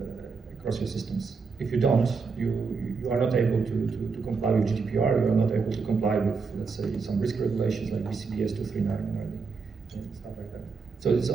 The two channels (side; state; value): left; quieter; 4.9 dB